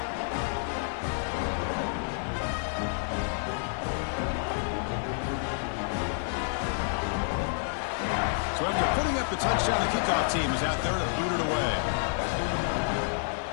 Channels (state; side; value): silent; right; digital silence